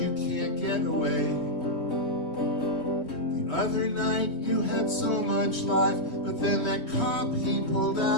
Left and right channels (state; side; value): late; right; 3.2 ms